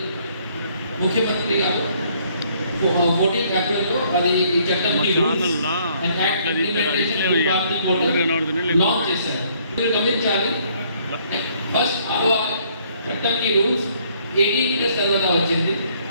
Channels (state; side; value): inverted; both; correlation -0.65